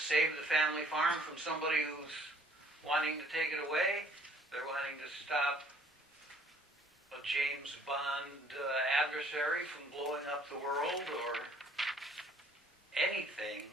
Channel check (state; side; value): normal; both; correlation 0.58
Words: the family farm from somebody who's wanting to take it away. They're wanting to stop a James Bond adversary from blowing up the world, or anything